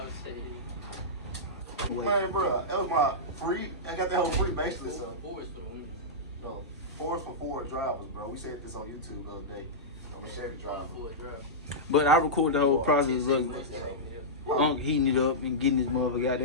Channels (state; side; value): normal; both; correlation -0.13